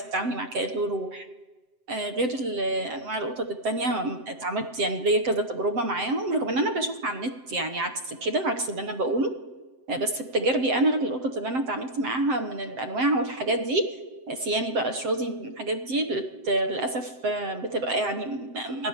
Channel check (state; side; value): late; left; 7.8 ms